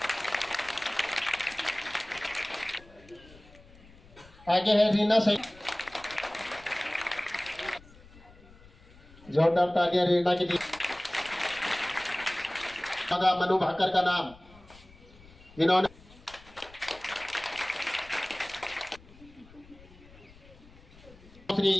आगे है रीना सैनी, जोरदार तालियां रीना के लिए। मनु भाकर का नाम, जिन्होंने श्री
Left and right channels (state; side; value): noise; left; rumble, 23 dB below the sound